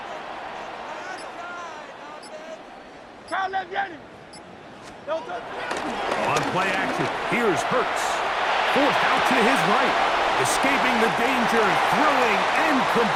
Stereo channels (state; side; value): identical; both; correlation 1.00